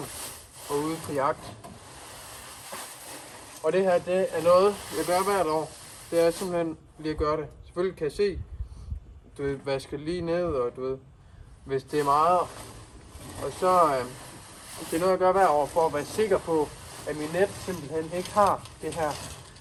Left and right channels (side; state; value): both; identical; correlation 1.00